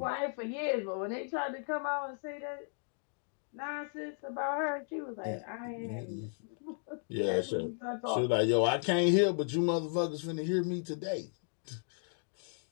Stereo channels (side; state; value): right; silent; digital silence